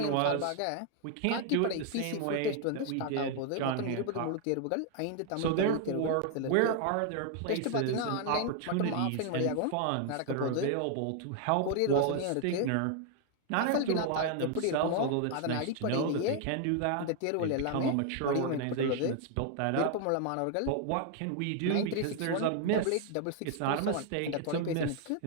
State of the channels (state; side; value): different; both; correlation 0.00